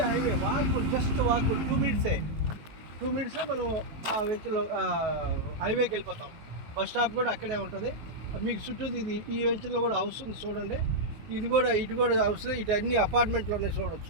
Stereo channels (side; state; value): left; late; 18 ms